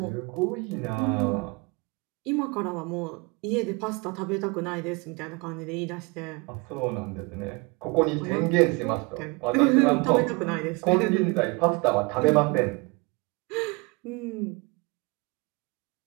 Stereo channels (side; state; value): left; quieter; 28.4 dB